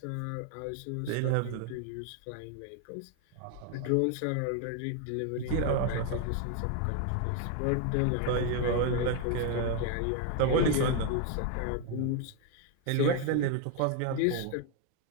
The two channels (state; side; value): different; both; correlation 0.01